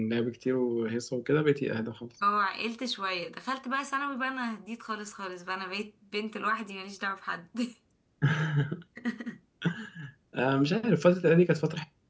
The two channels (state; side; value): identical; both; correlation 1.00